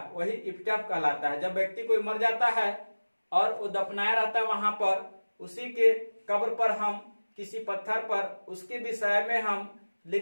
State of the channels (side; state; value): both; inverted; correlation -1.00